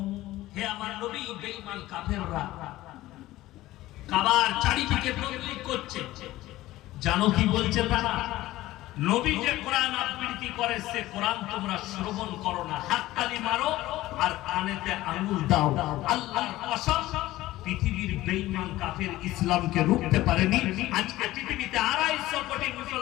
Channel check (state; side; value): quieter; right; 16.6 dB